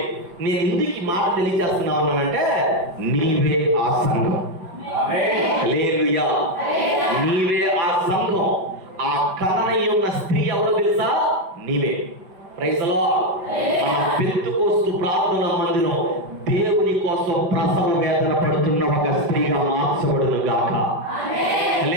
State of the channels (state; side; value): late; left; 5.4 ms